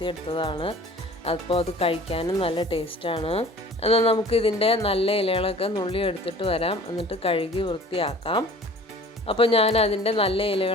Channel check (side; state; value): both; normal; correlation 0.46